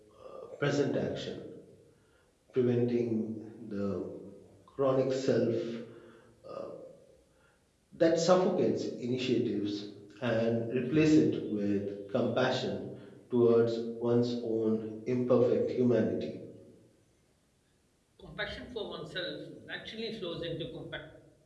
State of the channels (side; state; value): both; identical; correlation 1.00